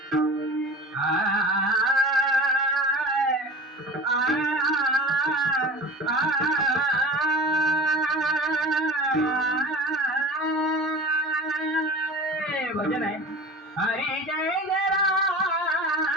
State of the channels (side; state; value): both; normal; correlation 0.36